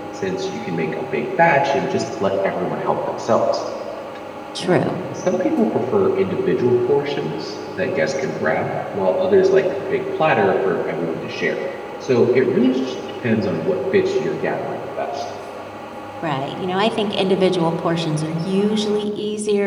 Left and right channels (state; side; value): identical; both; correlation 1.00